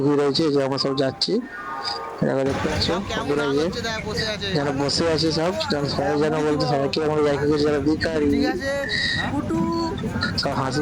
ভিড় হয়েছে। যে আমরা সব যাচ্ছি, দেখো, দেখতে পাচ্ছ সব কেমন বন্ধুরা, নাচ যে হচ্ছে দেখ বসে আছে। যারা বসে আছে সব, সবাই যেন পুটি বলতে, দিব সবাইকে আমরা দেখে গেছি যারা ভিখারি, ঠিক আছে পুটু সব হাসি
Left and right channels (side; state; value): both; identical; correlation 1.00